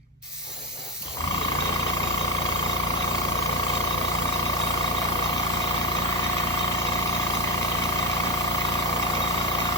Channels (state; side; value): normal; both; correlation 0.16